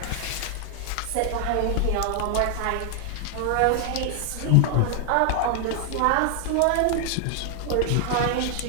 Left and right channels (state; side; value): different; both; correlation 0.00